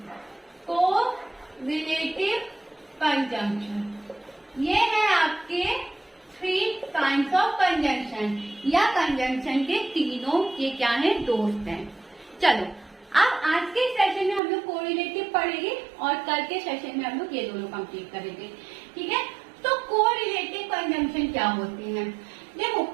कंजंक्शन। ये है आपके 3 काइंड्स ऑफ कंजंक्शन, या कंजंक्शन के तीनों ये क्या है? दोस्त हैं। चलो, अब आज के सेशन में हम लोग कोरिलेटिव पढ़ेंगे और कल के सेशन में हम लोग ये दोनों कंप्लीट करेंगे। ठीक है, तो कोरिलेटिव कंजंक्शन क्या होती है? देखो,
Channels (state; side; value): drops out; left; at 14.4 s